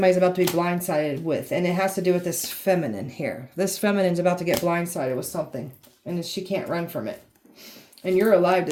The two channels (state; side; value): identical; both; correlation 1.00